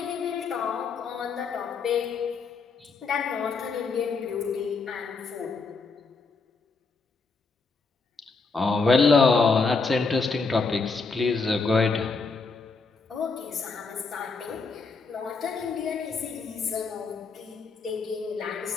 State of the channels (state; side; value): quieter; right; 4.4 dB